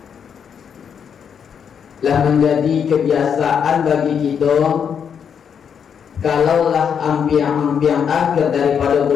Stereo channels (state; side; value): quieter; right; 7.5 dB